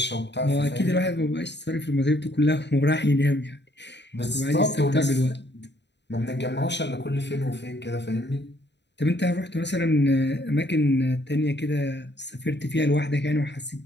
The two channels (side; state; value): right; late; 0.51 ms